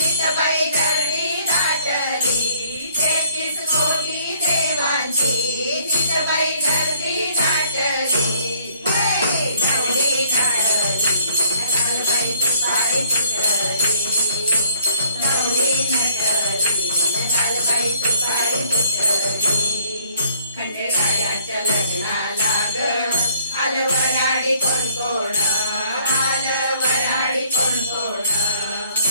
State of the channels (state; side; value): inverted; both; correlation -0.60